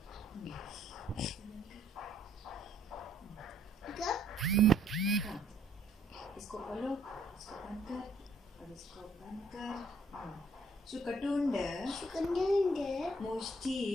इसको खोलो, इसको बंद कर, और इसको बंद कर। सुकटुंड. मुष्टि.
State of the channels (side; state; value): both; normal; correlation 0.66